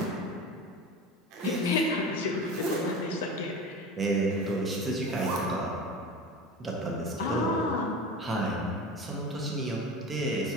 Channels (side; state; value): both; normal; correlation 0.31